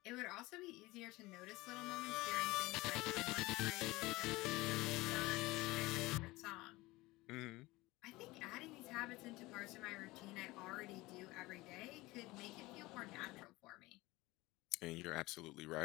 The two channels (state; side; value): quieter; right; 20.7 dB